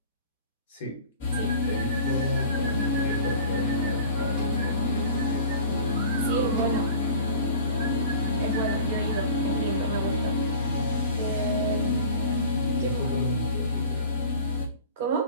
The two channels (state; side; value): inverted; both; correlation -0.43